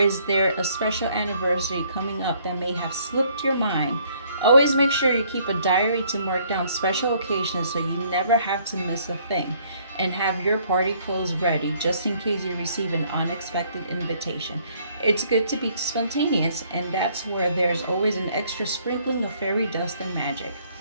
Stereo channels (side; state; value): both; inverted; correlation -0.64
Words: is there a special anniversary coming up that may have slipped your mind? Always make sure you keep a diary to mark down special occasions so you never have to miss a thing, and have your party clothes ready just in case you receive an unexpected invitation. It's good to be spontaneous, and that's where there's always an extra sprinkling of fairy dust and magic.